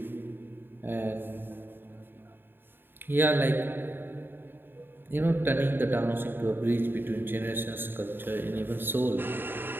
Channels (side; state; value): left; late; 0.098 ms